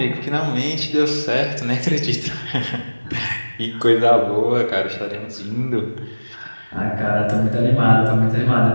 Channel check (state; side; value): inverted; both; correlation -1.00